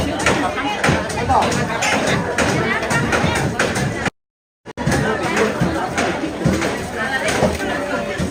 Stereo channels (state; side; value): identical; both; correlation 1.00